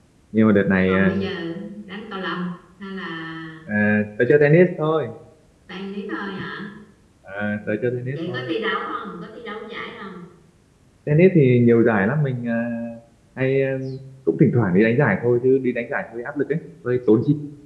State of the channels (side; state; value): both; identical; correlation 1.00